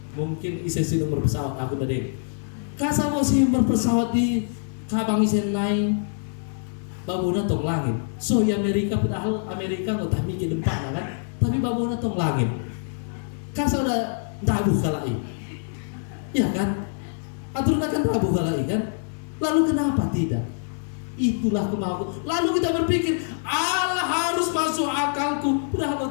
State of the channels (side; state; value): right; silent; digital silence